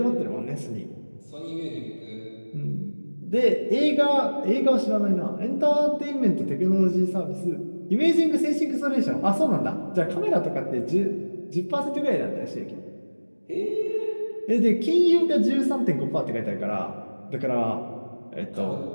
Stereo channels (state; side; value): inverted; both; correlation -1.00